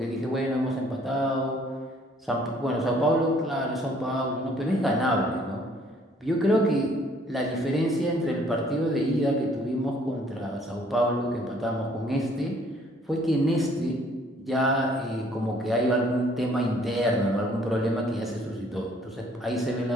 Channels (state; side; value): normal; both; correlation 0.60